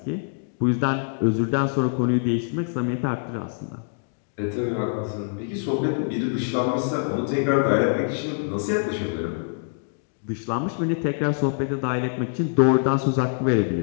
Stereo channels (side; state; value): right; silent; digital silence